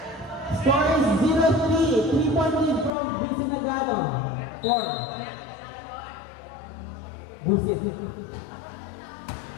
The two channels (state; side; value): drops out; right; at 2.9 s